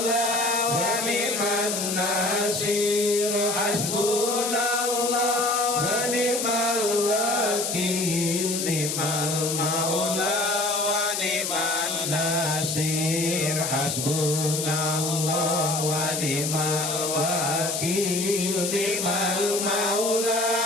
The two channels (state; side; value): noise; left; hiss, 2 dB below the sound